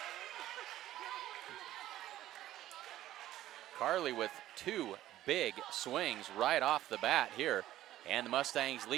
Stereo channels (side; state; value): left; quieter; 13.8 dB